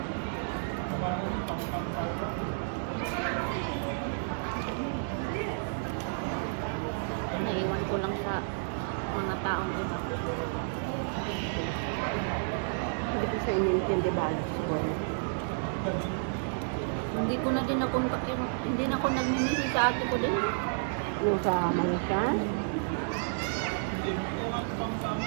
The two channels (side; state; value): left; silent; digital silence